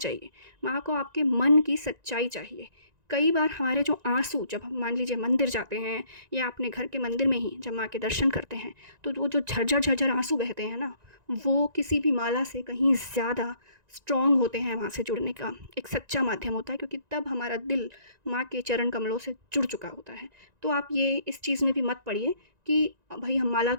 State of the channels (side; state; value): left; late; 1.9 ms